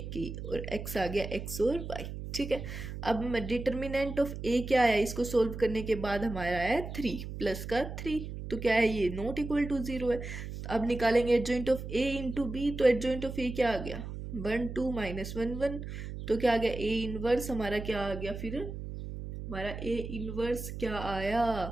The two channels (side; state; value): right; noise; hum, 8 dB below the sound